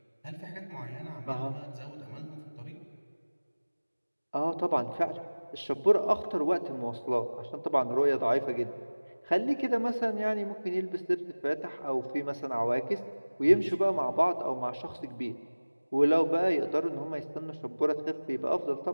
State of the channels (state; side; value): inverted; both; correlation -1.00